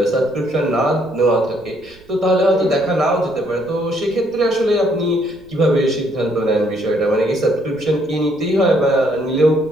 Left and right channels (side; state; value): right; noise; rumble, 28 dB below the sound